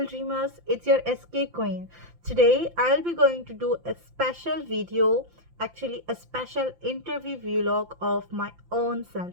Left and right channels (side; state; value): left; late; 5.8 ms